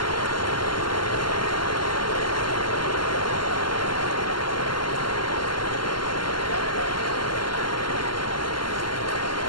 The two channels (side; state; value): right; late; 0.72 ms